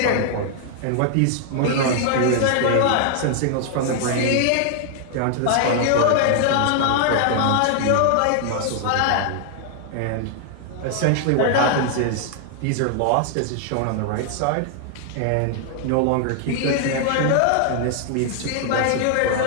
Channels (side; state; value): both; different; correlation 0.00